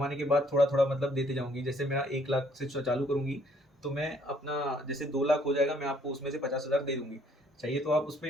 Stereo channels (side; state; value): both; normal; correlation 0.64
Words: के बाद थोड़ा थोड़ा मतलब देते जाऊंगी। जैसे मेरा 1 लाख से चालू करूंगी, तो मैं अपना जैसे 2 लाख हो जाएगा, मैं आपको उसमें से 50 हज़ार दे दूंगी। चाहिए तो आप